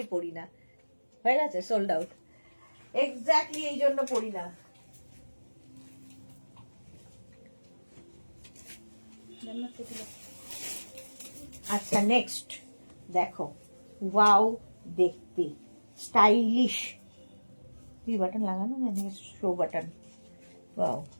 পড়ি না। হয়ে গেছে, সোল্ড আউট। এক্স্যাক্টলি এই জন্য পড়ি না। আচ্ছা নেক্সট দেখো, ওয়াও দেখতে স্টাইলিশ। কি বাটন লাগানো, শো বাটন। ওয়াও,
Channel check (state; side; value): inverted; both; correlation -1.00